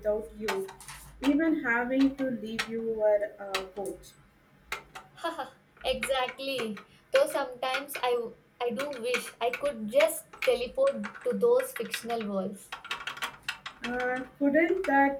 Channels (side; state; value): both; identical; correlation 1.00